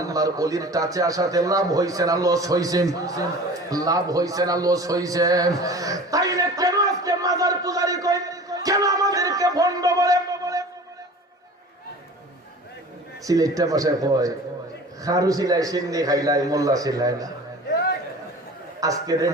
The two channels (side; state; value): both; normal; correlation 0.40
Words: ওলির টাচে আসাতে লাভ হইছে না লস হইছে? লাভ হইছে না লস হইছে? তাইলে কেন আজকে মাজার পূজারি কই, কেন আমাদেরকে ভণ্ড বলে? সিলেটটা ভাষায় কয় খারু সিলাই সিন্নি খাইলাই মোল্লা সিলাই না। আজকে